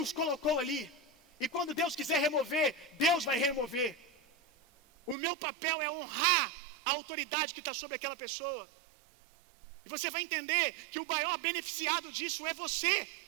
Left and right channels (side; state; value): left; drops out; at 5.2 s